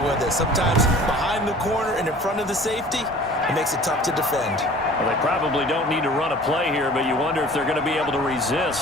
it, sometimes behind the corner and in front of the safety, it makes it tough to defend. Well, they probably don't need to run a play here, but you wonder if they're going to be able to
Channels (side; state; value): both; normal; correlation 0.46